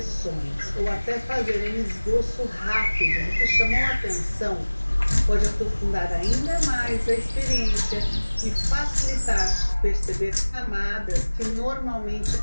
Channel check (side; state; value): both; inverted; correlation -1.00